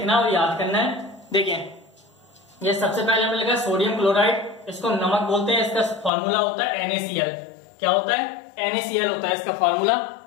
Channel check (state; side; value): drops out; right; at 6.1 s